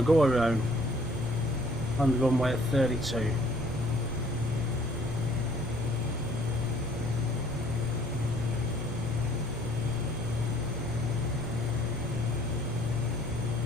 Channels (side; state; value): both; normal; correlation 0.59